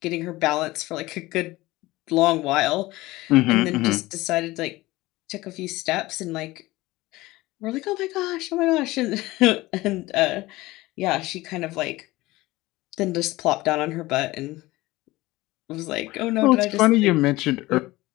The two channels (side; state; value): right; quieter; 19.3 dB